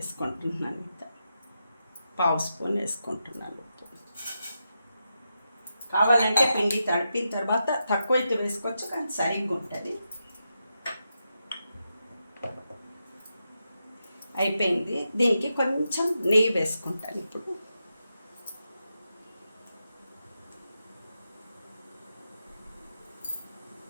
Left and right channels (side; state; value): both; inverted; correlation -0.87